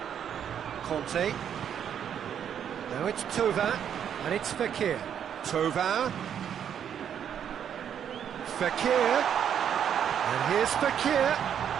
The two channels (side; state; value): left; quieter; 8.8 dB